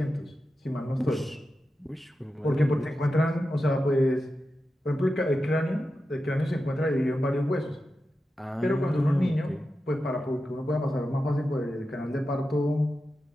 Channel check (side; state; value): both; normal; correlation 0.91